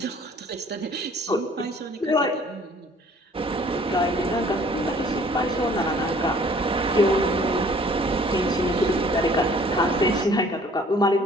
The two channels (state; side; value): normal; both; correlation 0.55